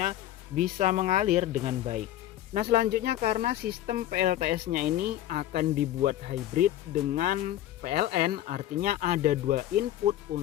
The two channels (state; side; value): quieter; right; 13.1 dB